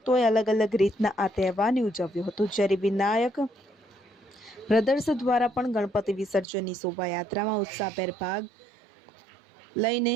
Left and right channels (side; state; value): left; drops out; at 6.5 s